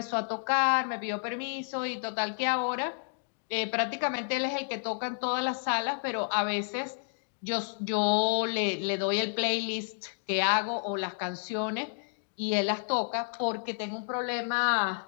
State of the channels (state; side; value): silent; right; digital silence